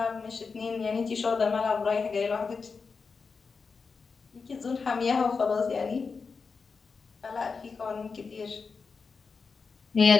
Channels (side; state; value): right; quieter; 5.0 dB